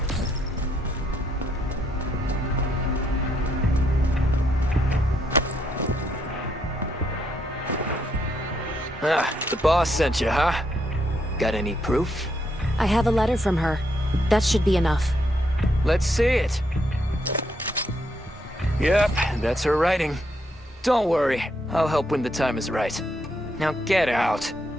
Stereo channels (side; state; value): both; normal; correlation 0.76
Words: Ah, the boss sent you, huh? Got any proof? I have a letter from her. That should be enough. Let's see it. Yep, that's her writing. Don't worry, I'll help when the time is right. Now get out.